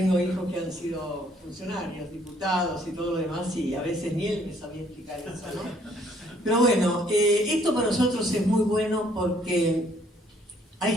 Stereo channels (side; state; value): both; normal; correlation 0.64